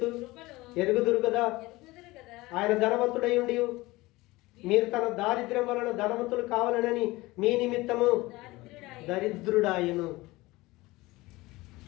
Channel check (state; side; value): quieter; right; 20.4 dB